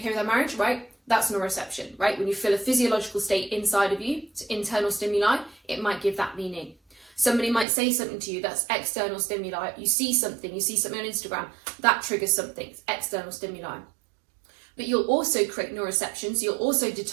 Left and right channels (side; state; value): left; drops out; at 7.7 s